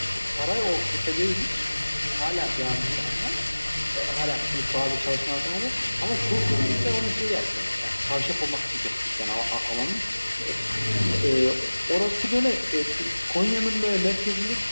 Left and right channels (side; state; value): both; inverted; correlation -1.00